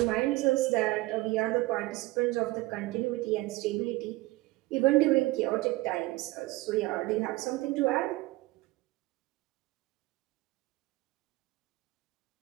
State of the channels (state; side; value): quieter; left; 20.0 dB